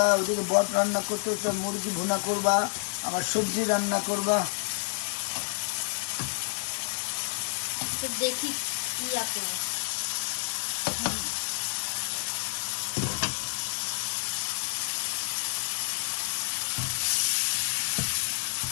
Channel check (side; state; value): right; silent; 58 dB below the other